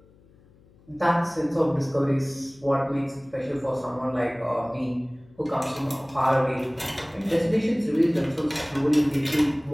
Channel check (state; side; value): noise; left; hum, 28 dB below the sound